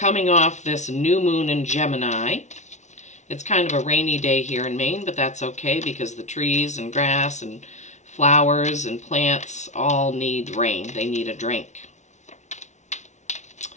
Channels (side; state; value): right; late; 0.34 ms